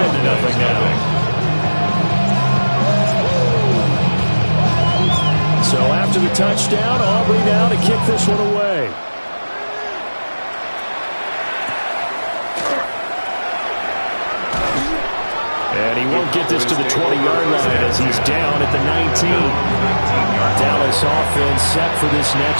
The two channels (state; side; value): inverted; both; correlation -1.00